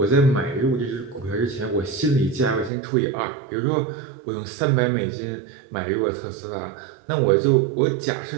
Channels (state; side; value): drops out; left; at 2.7 s